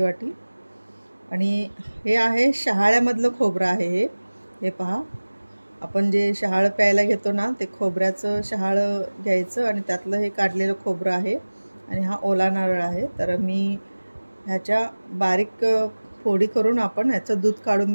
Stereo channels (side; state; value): both; inverted; correlation -1.00